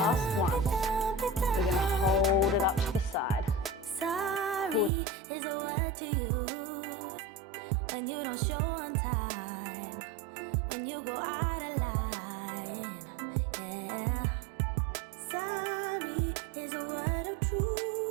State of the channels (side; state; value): left; drops out; at 4.9 s